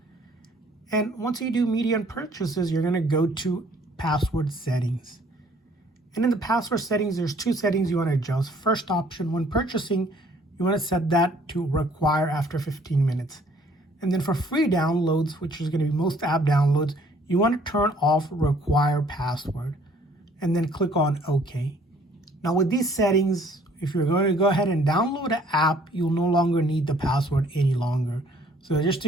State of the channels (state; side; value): normal; both; correlation 0.59